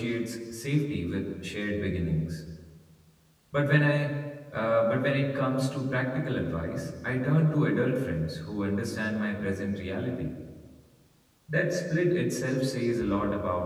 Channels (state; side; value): identical; both; correlation 1.00